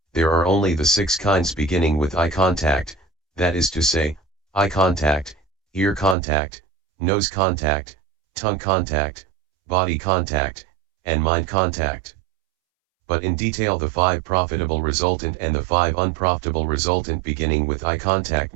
there are only the 6 kinds beginning with eye contact, that is to say, eye contact, ear contact, nose contact, tongue contact, body contact, and mind contact. But in detail the 5 profitable resultant and the 5 unprofitable resultant beginning with eye contact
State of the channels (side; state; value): left; drops out; at 6.2 s